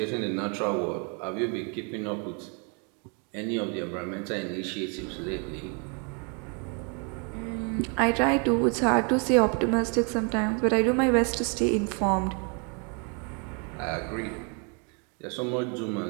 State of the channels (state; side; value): quieter; left; 36.6 dB